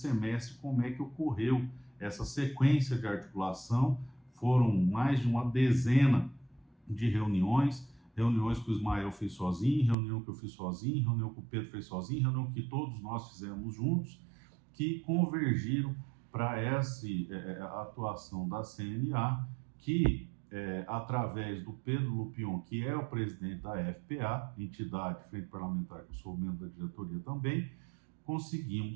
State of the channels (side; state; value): left; drops out; at 10.0 s